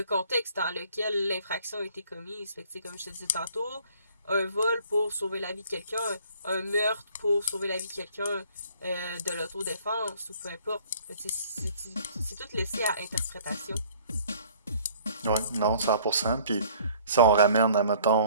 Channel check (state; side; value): inverted; both; correlation -0.55